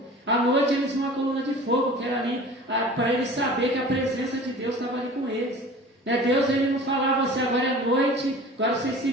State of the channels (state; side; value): normal; both; correlation 0.41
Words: À noite eles viam uma coluna de fogo, que era ali para eles saberem que a presença de Deus estava ali com eles. Né? Deus ele não falava assim: agora é noite, agora vocês se